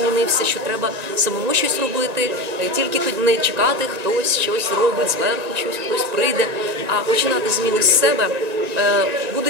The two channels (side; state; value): left; late; 1.9 ms